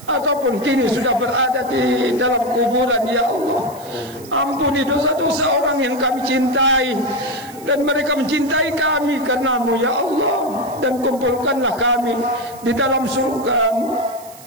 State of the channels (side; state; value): right; noise; hiss, 20 dB below the sound